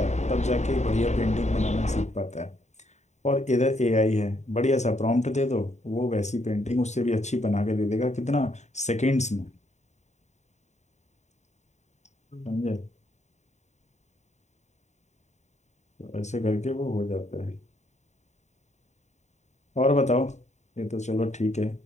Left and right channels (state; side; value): late; right; 0.34 ms